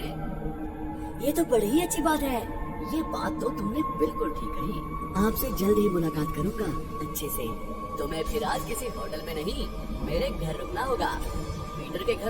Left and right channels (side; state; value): both; identical; correlation 1.00